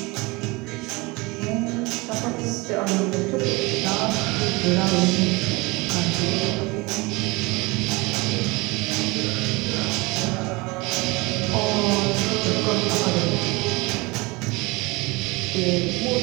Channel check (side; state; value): left; quieter; 24.6 dB